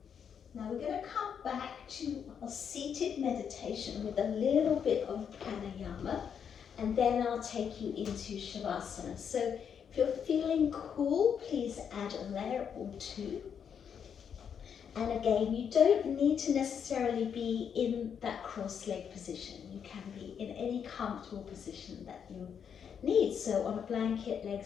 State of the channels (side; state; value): right; quieter; 7.6 dB